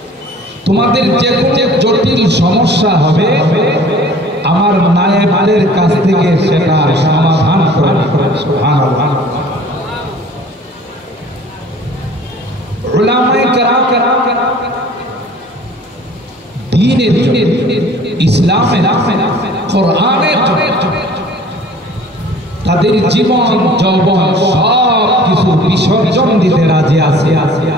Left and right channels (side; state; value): both; normal; correlation 0.49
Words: তোমাদের যে কোনো জটিল সমস্যা হবে, আমার নায়েবের কাছ থেকে সেটা সমাধান করে। সুবহানাল্লাহ। উলামায়ে কেরাম দ্বীনের, ইসলামের, কোরআনের তাদের জীবন যৌবন সব কিছু বিসর্জন দিতে রাজি আছে,